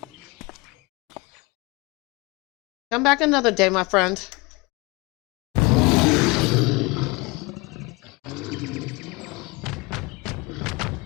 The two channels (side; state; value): right; quieter; 25.4 dB